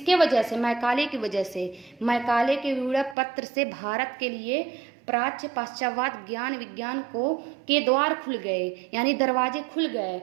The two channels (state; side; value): drops out; left; at 3.2 s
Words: वजह से? मैकाले की वजह से। मैकाले के विवरण पत्र से भारत के लिए प्राच्य पाश्चात्य ज्ञान विज्ञान के द्वार खुल गए, यानी दरवाजे खुल गए,